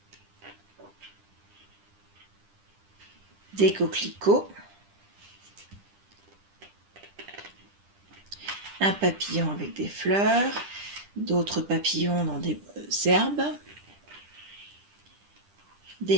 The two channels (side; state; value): left; late; 10 ms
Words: Des coquelicots. Un papillon avec des fleurs. D'autres papillons dans des herbes.